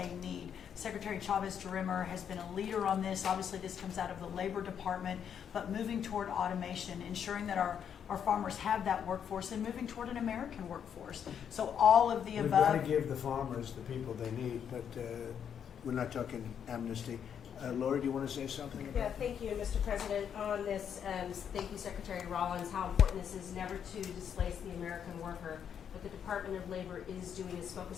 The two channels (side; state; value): right; quieter; 8.2 dB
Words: need. Secretary Chavez-DeRimmer has been a leader on this. Obviously this comes out of the Labor Department, but moving toward automation, ensuring that our farmers have that workforce, and moving toward an American workforce. So all of the We've above. got to give the farmers the people they need, but we're not talking amnesty. Laura, do you want to say something about Yeah, thank you, Mr. President. On this, thank you, Secretary Rollins, how important this is never to displace the American worker. What the Department of Labor is doing is